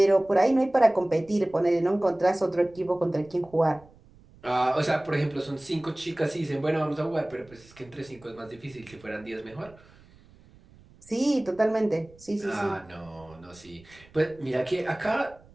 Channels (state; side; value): noise; right; rumble, 25 dB below the sound